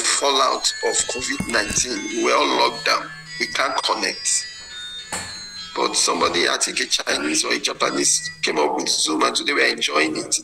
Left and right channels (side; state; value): both; identical; correlation 1.00